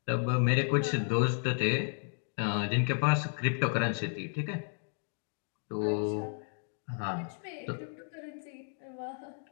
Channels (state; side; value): silent; right; 56 dB below the other